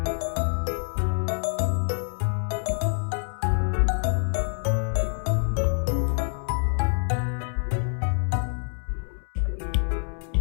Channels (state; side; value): silent; right; digital silence